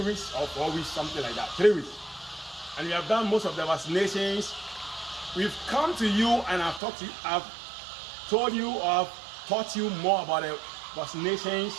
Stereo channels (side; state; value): left; drops out; at 6.8 s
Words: weeks or 4 weeks, something like that, 3 weeks. And we have done most of the vaccinations. We've come to you and I've told you or I've taught you more about the vaccinations.